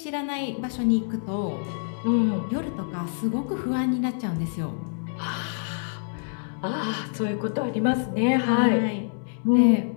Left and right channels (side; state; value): right; silent; digital silence